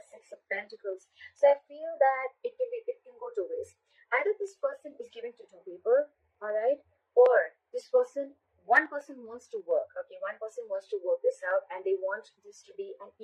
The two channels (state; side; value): identical; both; correlation 1.00